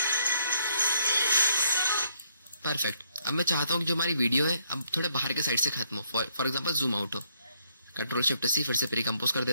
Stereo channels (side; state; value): both; inverted; correlation -0.71